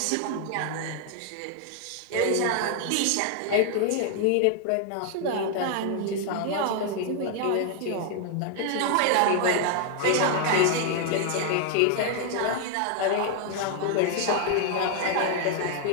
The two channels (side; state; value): both; different; correlation 0.00